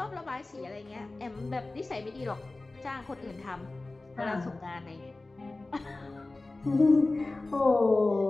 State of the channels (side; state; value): right; quieter; 3.1 dB